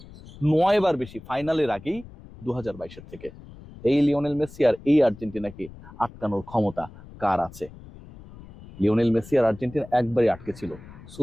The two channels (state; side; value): noise; left; rumble, 18 dB below the sound